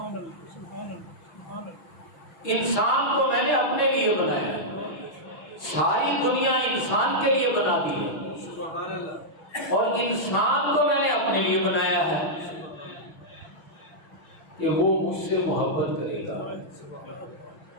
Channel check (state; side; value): late; right; 6.1 ms